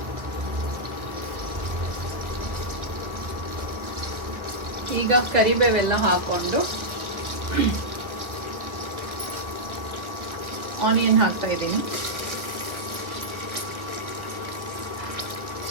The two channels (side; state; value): left; late; 1.5 ms